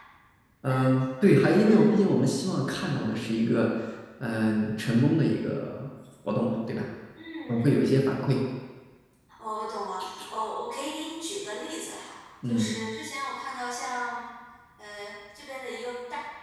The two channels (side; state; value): both; identical; correlation 1.00